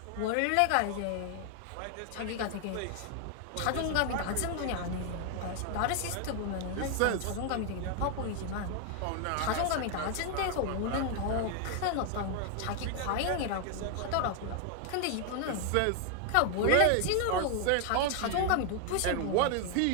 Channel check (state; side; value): different; both; correlation 0.00